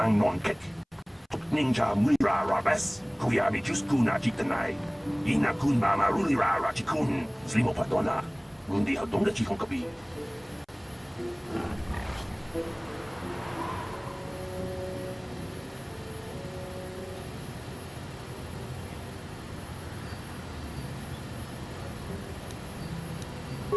Non Kek, Tok Ninja Mira Rabes, Kuyami Juskuna Chitanai, Inakun Mama Rulira Rachikun, Slimo Patona, Mundi Hadonga Chihonkabi.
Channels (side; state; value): both; identical; correlation 1.00